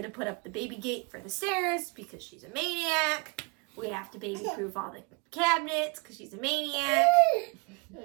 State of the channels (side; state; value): left; quieter; 29.1 dB